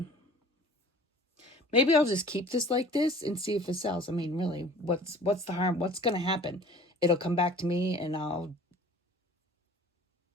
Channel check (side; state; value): both; normal; correlation 0.46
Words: Maybe I'll just keep this like this and see if it sells. I mean, really, what's the harm? What's going to happen? It'll come back to me and I